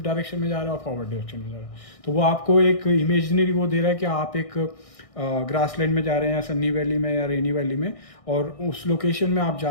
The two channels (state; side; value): late; right; 1.6 ms